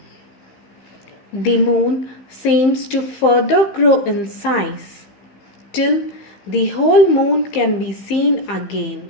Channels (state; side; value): late; right; 15 ms